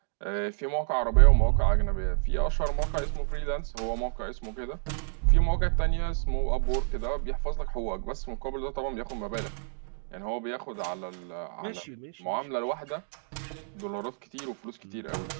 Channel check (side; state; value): left; silent; digital silence